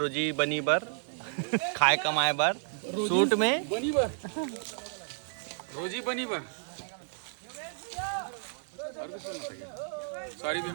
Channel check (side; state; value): left; silent; 57 dB below the other